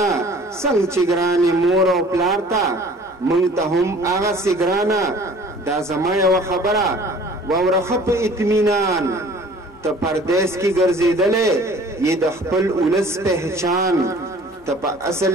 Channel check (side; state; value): both; normal; correlation 0.50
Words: څنګه چې ګرانې مور او پلار ته موږ ته هم هغسې ګرانه دا زما یوه خبره واوره ښه په اطمینان ته پردیس کې ګرځېدلی یې د خپل ولس پهچان ته په اصل